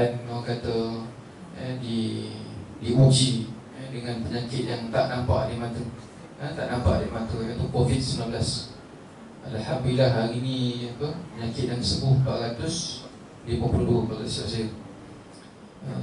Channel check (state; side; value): identical; both; correlation 1.00